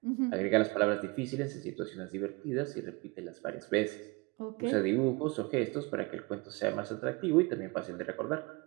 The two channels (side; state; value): left; quieter; 26.6 dB